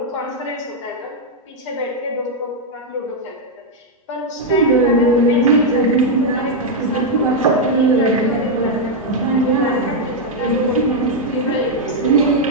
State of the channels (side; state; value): both; normal; correlation -0.01